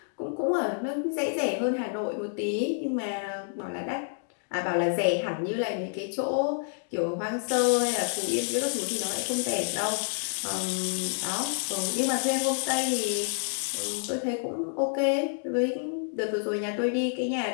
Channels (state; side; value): silent; right; digital silence